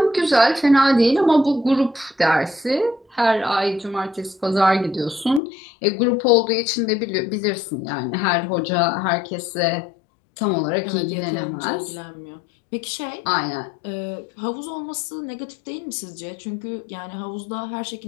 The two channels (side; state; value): right; drops out; at 5.4 s